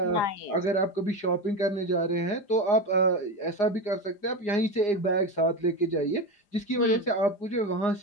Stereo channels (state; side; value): late; right; 4.9 ms